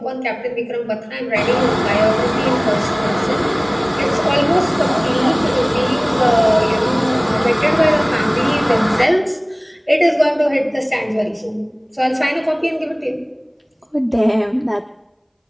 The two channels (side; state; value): both; identical; correlation 1.00